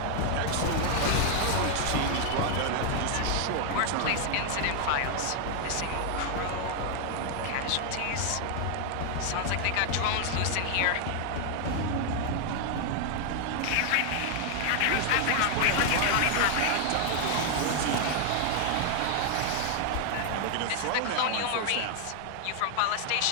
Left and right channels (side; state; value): both; different; correlation 0.00